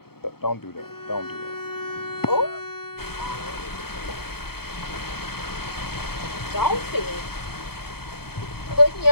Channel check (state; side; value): late; right; 0.95 ms